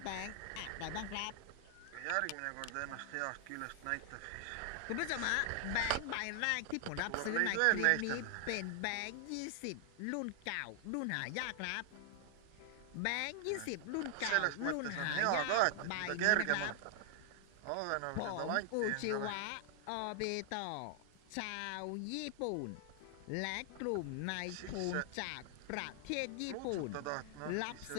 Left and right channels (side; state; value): both; different; correlation 0.00